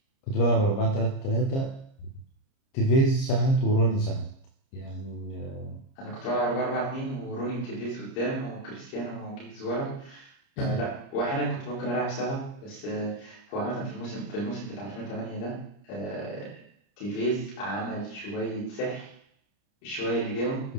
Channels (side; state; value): right; late; 30 ms